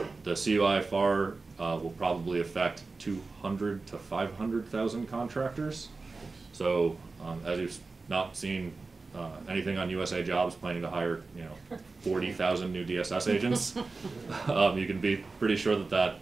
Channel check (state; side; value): quieter; left; 3.8 dB